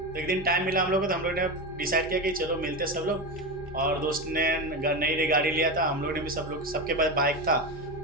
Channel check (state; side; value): normal; both; correlation 0.18